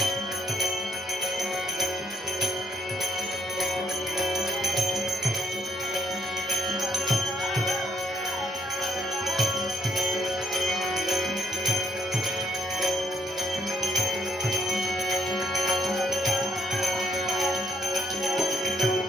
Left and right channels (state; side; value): normal; both; correlation 0.71